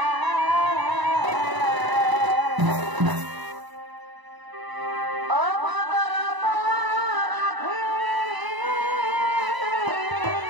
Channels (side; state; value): left; late; 1.0 ms